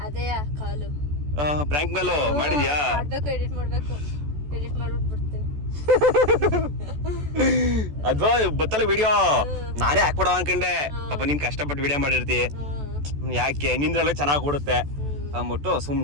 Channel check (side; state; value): left; late; 14 ms